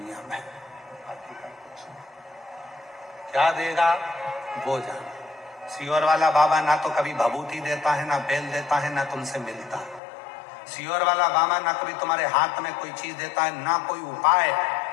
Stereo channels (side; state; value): right; drops out; at 10.0 s